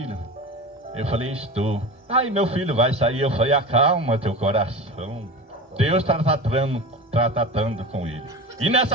Eu falei, estou. Aí meu filho vai sair. Eu falei, acalma teu coração. Deus está tratando com ele. E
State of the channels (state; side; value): normal; both; correlation 0.29